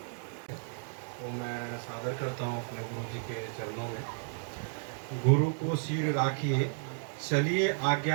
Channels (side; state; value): left; silent; digital silence